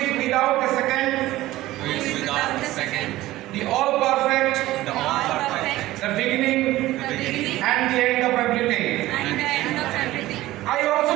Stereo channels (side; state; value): left; quieter; 16.6 dB